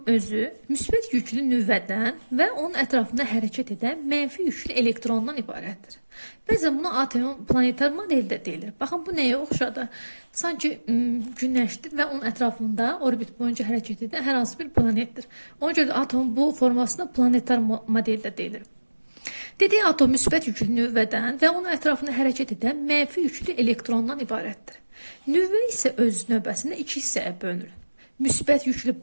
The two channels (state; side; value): inverted; both; correlation -1.00